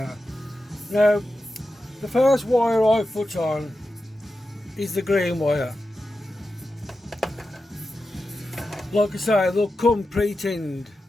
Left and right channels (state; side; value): normal; both; correlation 0.91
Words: Now, the first wire I put on is the green wire. Like I say, they'll come pre-tinned